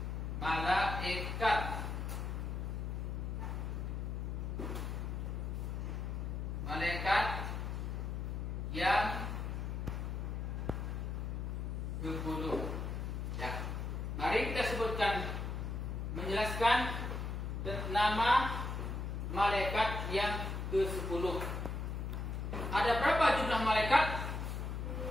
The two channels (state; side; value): noise; left; hum, 3 dB below the sound